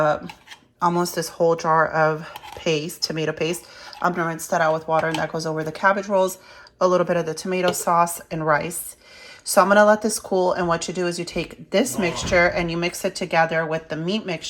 almost this whole jar of paste, tomato paste. I'm gonna rinse that out with water and that goes over the cabbage rolls, a little bit of the tomato sauce and rice. So I'm gonna let this cool, and what you do is you take this mixture and you mix it together with the meat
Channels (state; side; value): identical; both; correlation 1.00